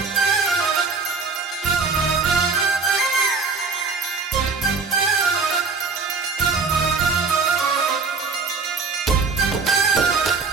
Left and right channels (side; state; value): left; quieter; 4.6 dB